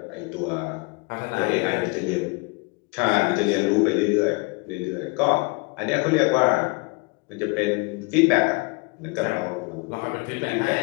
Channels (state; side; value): quieter; right; 29.2 dB